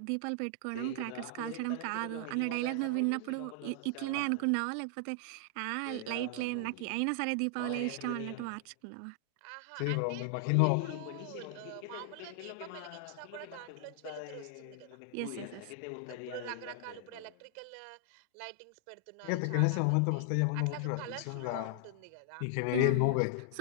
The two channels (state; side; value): different; both; correlation 0.00